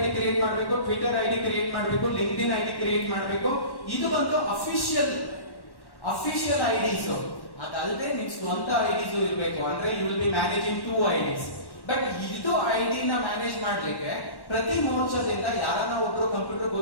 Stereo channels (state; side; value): late; right; 1.1 ms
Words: ಕ್ರಿಯೇಟ್ ಮಾಡಬೇಕು, ಟ್ವಿಟರ್ ID ಕ್ರಿಯೇಟ್ ಮಾಡಬೇಕು, ಲಿಂಕ್ಡ್ಇನ್ ID ಕ್ರಿಯೇಟ್ ಮಾಡಬೇಕು. ಇದು ಒಂದು ಅಫಿಷಿಯಲ್ IDs. ಅದಲ್ಲದೆ ನಿಮ್ ಸ್ವಂತ IDs ಇರಬೇಕು. ಅಂದ್ರೆ you will be managing 2 IDs. But ಇದು ID ನ ಮ್ಯಾನೇಜ್ ಮಾಡ್ಲಿಕ್ಕೆ ಪ್ರತಿ ಮೋರ್ಚಾದಿಂದ ಯಾರನ್ನ ಒಬ್ರು ಕಂಪ್ಯೂಟರ್